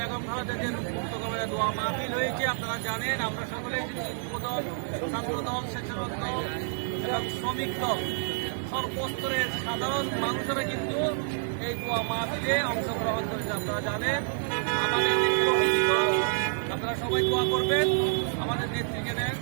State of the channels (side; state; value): left; silent; digital silence